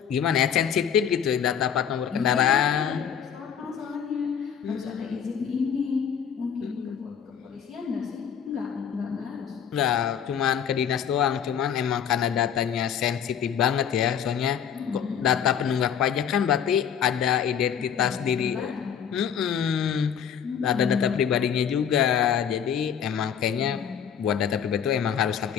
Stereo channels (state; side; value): quieter; right; 8.1 dB